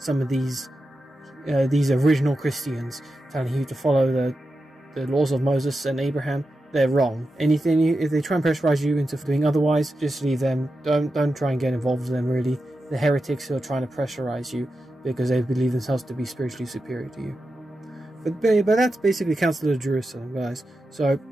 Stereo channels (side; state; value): both; normal; correlation 0.90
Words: of these original Christians telling you to follow the laws of Moses and Abraham, they're wrong. If they try and pressurize you into doing otherwise, just leave them. Don't try and get involved with them, really. The heretics who are trying to pressurize you because they believe themselves to be spiritually superior to you. But that's basically Council of Jerusalem, guys. So